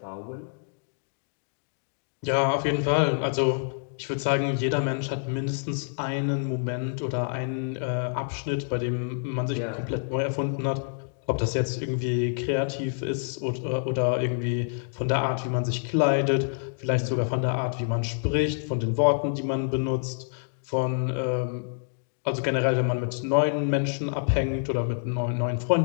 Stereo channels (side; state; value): right; silent; digital silence